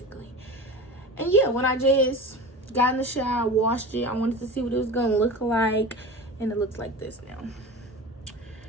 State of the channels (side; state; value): both; normal; correlation 0.32